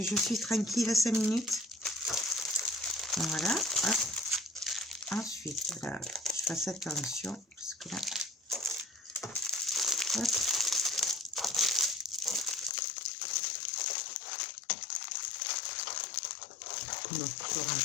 je suis tranquille 5 minutes. Voilà. Hop. Ensuite, là, je fasse attention, parce que là, hop. Donc, je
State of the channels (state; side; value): drops out; right; at 12.7 s